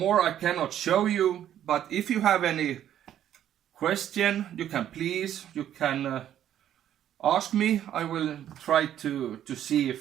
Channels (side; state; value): left; quieter; 10.9 dB